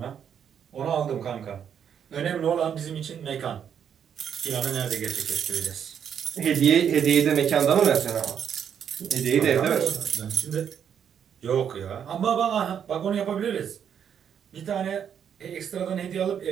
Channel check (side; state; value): left; quieter; 8.3 dB